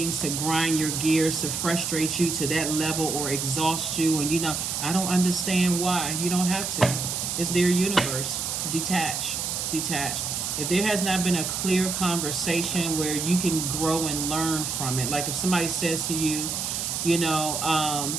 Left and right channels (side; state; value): right; noise; hiss, 2 dB below the sound